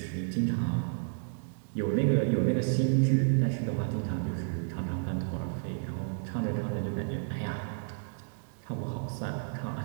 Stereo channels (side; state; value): left; silent; digital silence